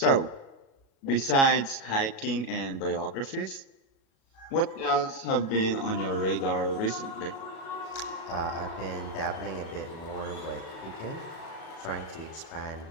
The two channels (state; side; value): late; right; 37 ms